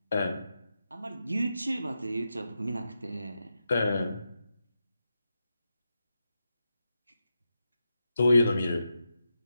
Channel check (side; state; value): both; inverted; correlation -0.88